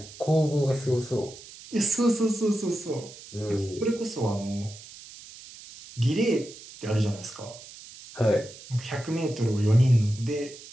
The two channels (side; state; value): right; noise; hiss, 17 dB below the sound